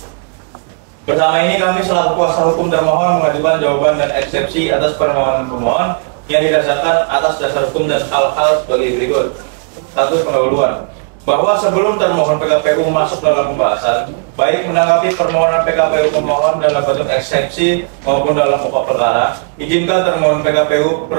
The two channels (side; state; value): left; quieter; 39.5 dB